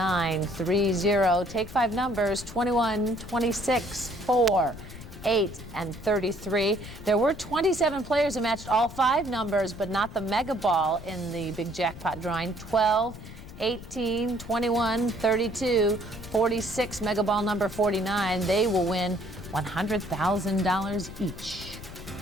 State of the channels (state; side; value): noise; left; rumble, 14 dB below the sound